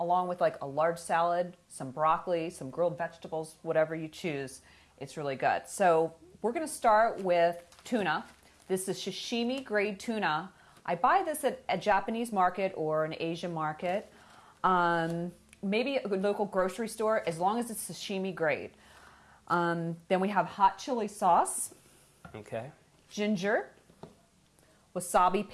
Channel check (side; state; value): both; identical; correlation 1.00